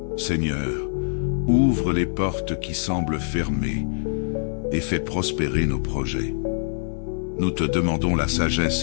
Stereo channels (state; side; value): silent; right; digital silence